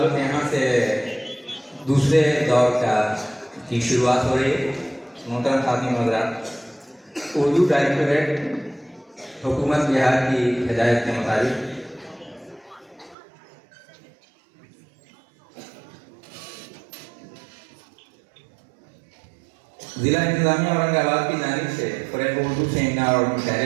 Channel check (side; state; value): left; drops out; at 13.2 s